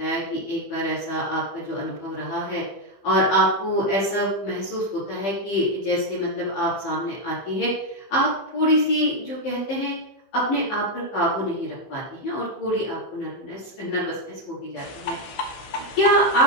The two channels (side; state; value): right; late; 15 ms